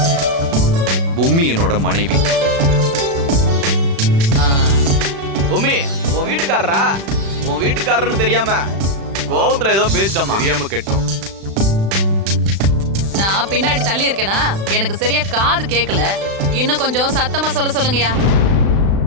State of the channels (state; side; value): late; left; 36 ms